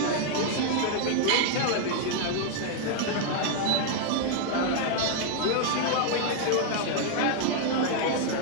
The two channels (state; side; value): different; both; correlation 0.00